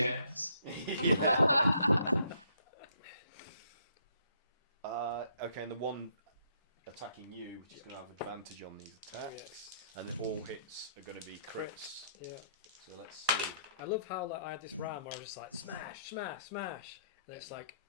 Okay, and the one attacking you, which is going to have advantage on these attacks, and then all hits are going to be crits. Yeah. So let's see. I love how I had this round where I was just smash, smash, smash, and it's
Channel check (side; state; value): both; inverted; correlation -0.69